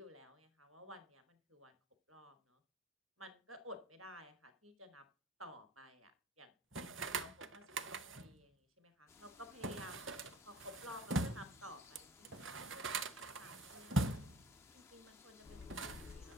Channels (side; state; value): both; normal; correlation 0.48